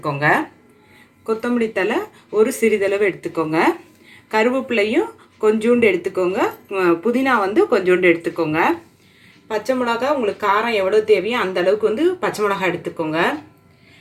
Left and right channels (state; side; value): identical; both; correlation 1.00